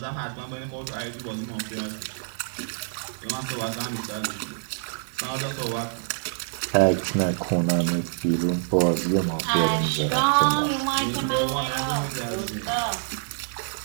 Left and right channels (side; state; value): left; silent; digital silence